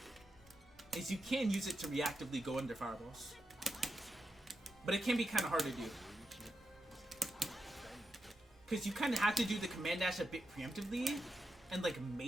Is you can use it to reactively go under fireballs. But it can be kind of hard to do. Because you kind of have to do the command dash a bit preemptively. And like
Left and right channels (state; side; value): normal; both; correlation 0.87